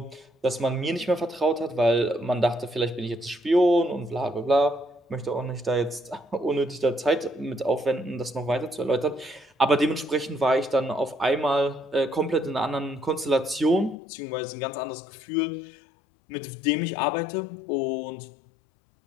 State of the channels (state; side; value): drops out; right; at 14.0 s